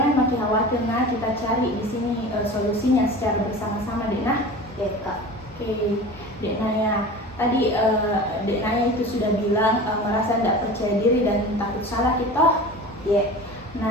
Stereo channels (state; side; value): normal; both; correlation 0.35